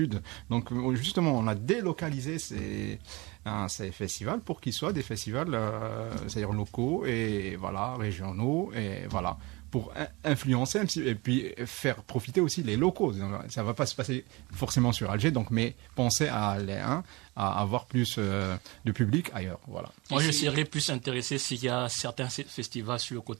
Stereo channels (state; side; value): quieter; left; 24.4 dB